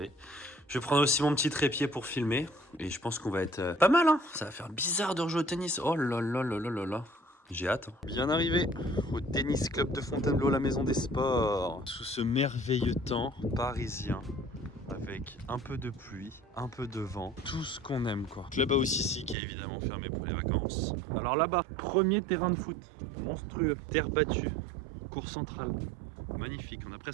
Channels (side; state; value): left; drops out; at 19.4 s